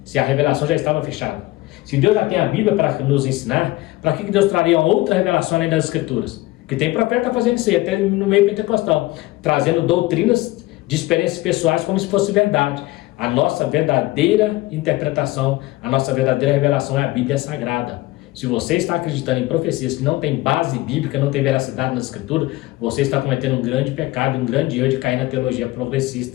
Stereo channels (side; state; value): right; quieter; 19.1 dB